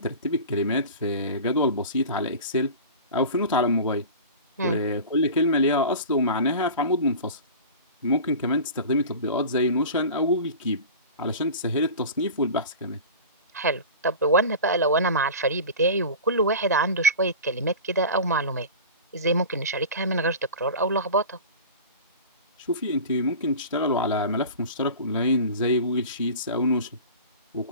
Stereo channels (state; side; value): inverted; both; correlation -0.34